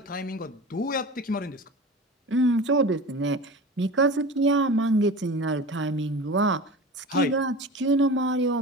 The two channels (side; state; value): both; normal; correlation 0.34